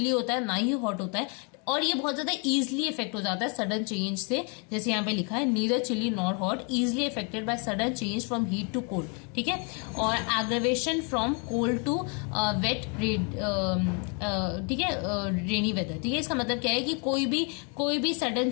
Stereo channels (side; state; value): right; quieter; 36.1 dB